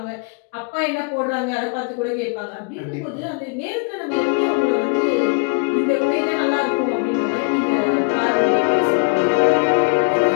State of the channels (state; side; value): quieter; right; 37.2 dB